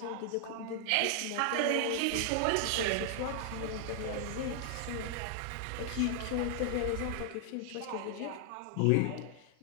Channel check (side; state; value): both; different; correlation 0.00